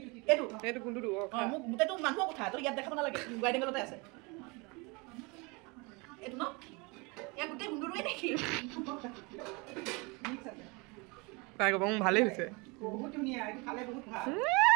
সেইটো গুন্দুটো মোক গোটেইটো মানুহৰ কথা তো ইয়াত দেখাব নালাগে গাইডিং গলতে আছে এইটো ন ইয়াত গোটেই গুন্দুটোৱে দেখি তাই ক'ব ভালেই হৈছে বহুত ধুনীয়া এইটো খালে বহুত ভাল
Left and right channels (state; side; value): quieter; left; 28.2 dB